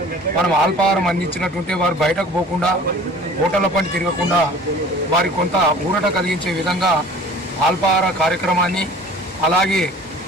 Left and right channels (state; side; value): normal; both; correlation 0.46